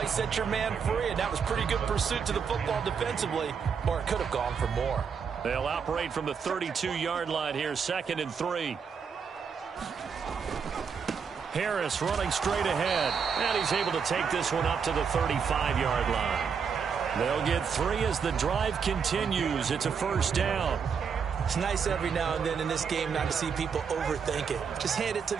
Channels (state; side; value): quieter; left; 6.4 dB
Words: set your man free, and that was pretty good pursuit to the football defensively, or it could have gone for more. They'll operate from the 32-yard line here, 2nd and 3. Harris running straight ahead, and he's able to take this one up to the 35-yard line. They'll get 3 as the drive continues. It's a 1st down. It's nice every now and then in this game not to see people overthink it. Just hand it to